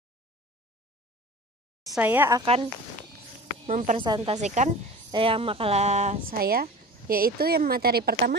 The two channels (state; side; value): normal; both; correlation 0.38